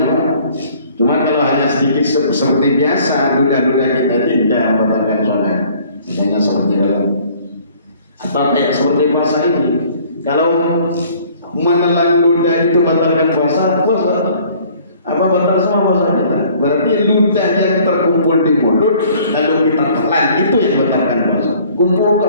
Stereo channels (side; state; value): both; inverted; correlation -0.55